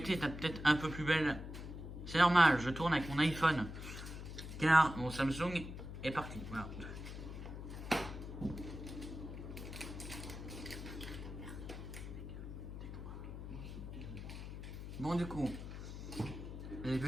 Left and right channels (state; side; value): noise; left; hum, 9 dB below the sound